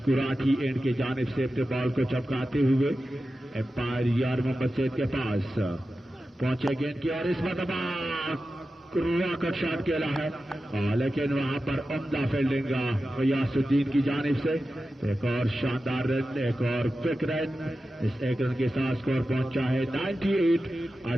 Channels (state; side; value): normal; both; correlation 0.93